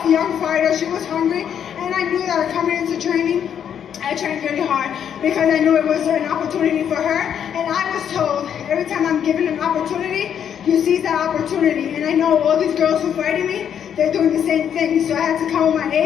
young fighter. She was hungry, and I knew that coming into training, I trained really hard because I knew it was an opportunity for her. And I was told every time I'm given an opportunity, you seize that opportunity. And I know all these girls who fighting me, they're doing the same thing. So I had to come with my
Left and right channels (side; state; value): right; quieter; 8.7 dB